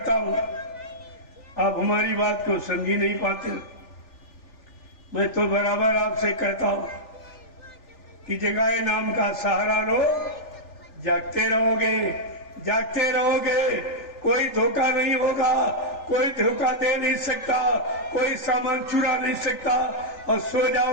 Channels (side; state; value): right; late; 3.4 ms